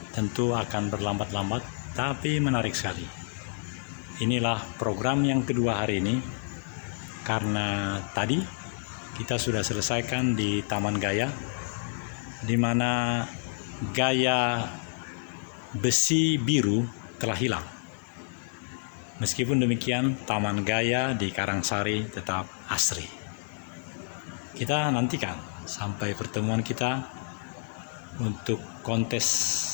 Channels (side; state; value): right; silent; digital silence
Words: Tentu akan berlambat-lambat, tapi menarik sekali. Inilah program yang kedua hari ini, karena tadi kita sudah selesaikan di Taman Gaya, di mana gaya besi biru telah hilang. Meskipun demikian, Taman Gaya di Karangsari tetap asri. Kita nantikan sampai pertemuan kita untuk